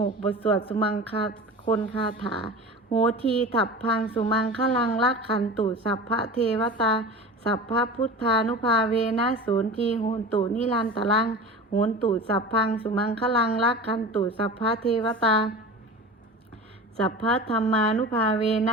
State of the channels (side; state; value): both; normal; correlation 0.34